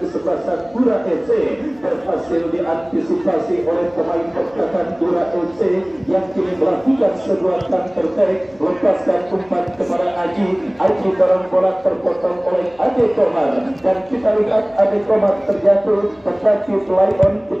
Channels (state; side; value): noise; left; hum, 29 dB below the sound